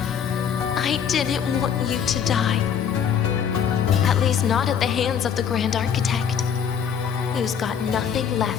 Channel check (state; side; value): quieter; right; 7.9 dB